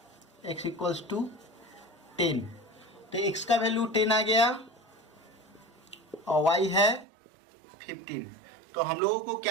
x इक्वल्स टू 10। तो x का वैल्यू 10 आ गया और y है 15। तो हम लोगों को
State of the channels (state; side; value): drops out; left; at 7.1 s